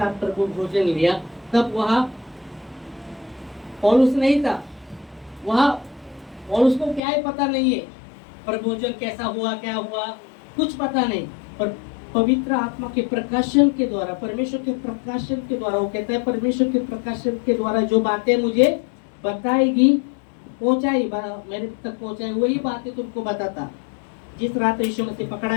प्रभु भोजन लिया तब वहाँ पौलुस नहीं था, वहाँ पौलुस को क्या है पता नहीं है, प्रभु भोजन कैसा हुआ क्या हुआ कुछ पता नहीं। पर पवित्र आत्मा के प्रकाशन के द्वारा, परमेश्वर के प्रकाशन के द्वारा, वो कहता है परमेश्वर के प्रकाशन के द्वारा जो बातें मुझे बताएगी, पहुंचाई, मेरे तक पहुंचाई, वही बातें तुमको बताता। जिस रात यीशु मसीह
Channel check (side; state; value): right; drops out; at 7.0 s